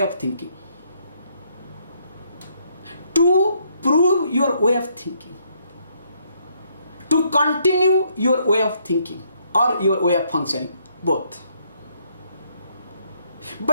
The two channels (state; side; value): inverted; both; correlation -0.71